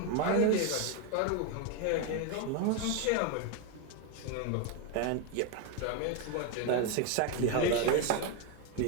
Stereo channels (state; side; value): different; both; correlation 0.02